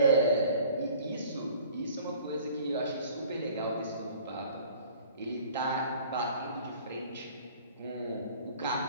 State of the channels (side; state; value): both; inverted; correlation -0.49